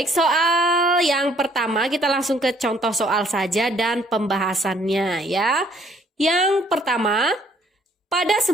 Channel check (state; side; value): normal; both; correlation 0.63